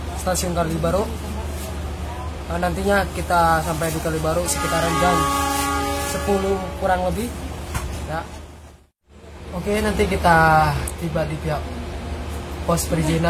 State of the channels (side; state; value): both; identical; correlation 1.00